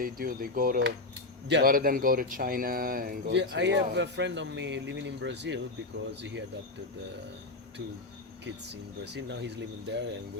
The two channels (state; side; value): quieter; right; 3.1 dB